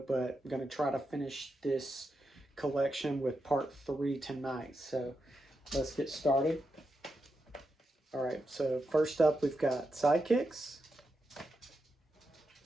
but I'm going to try to finish this collection with part 3 tonight, so let's get started. Alright, so first up we've got Sidekicks.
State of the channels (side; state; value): both; normal; correlation 0.86